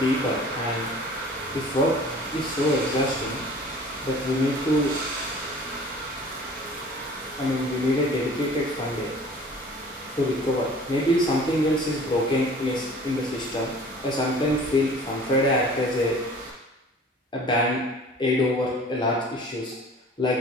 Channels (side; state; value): both; normal; correlation 0.46